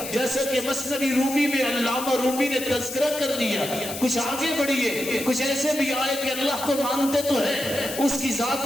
جیسا کہ مثنوی رومی میں علامہ رومی نے تذکرہ کر دیا۔ کچھ آگے بڑھیے، کچھ ایسے بھی آئے کہ اللہ کو مانتے تو ہے، اس کی ذات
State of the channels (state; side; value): noise; left; hiss, 8 dB below the sound